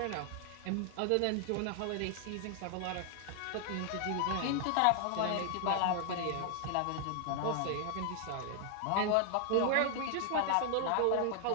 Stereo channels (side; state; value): both; different; correlation 0.00